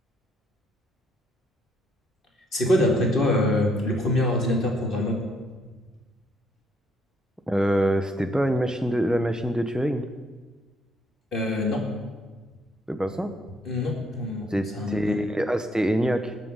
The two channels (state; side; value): normal; both; correlation 0.70